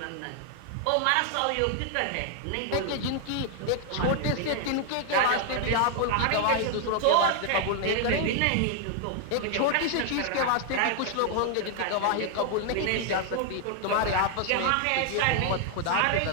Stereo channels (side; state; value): both; different; correlation 0.00